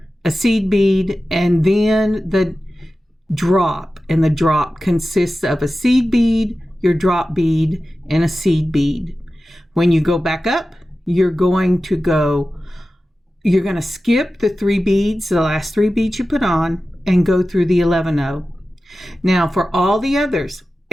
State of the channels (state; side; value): normal; both; correlation 0.94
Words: a seed bead, and then the drop. And the drop consists of a seed bead, your drop bead, and a seed bead. When you go back up, you're going to skip the 3 beads, the last 3 beads you put on, and go through the 11-0. Now for all the others,